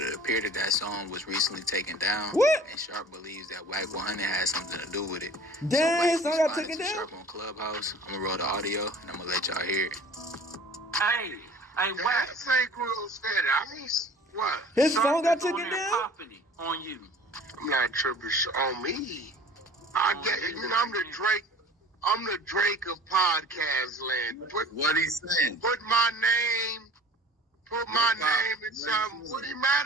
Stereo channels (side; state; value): both; normal; correlation 0.46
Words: appeared that that song was recently taken down. What? And Sharp believes that WACK100 has something to do with it. Damn, his so song Wack got taken responded to down? Sharp on Clubhouse. I'm gonna roll the audio, and I'm gonna let y'all hear it. Hey, Wack. That ain't real said. I mean, what? His song got Sharp is on taken there down? popping it on you. I'm not tripping on me. I get it. You know, I'm the Drake. I'm the Drake of podcast land. What he saying? Put my name in something. What he mad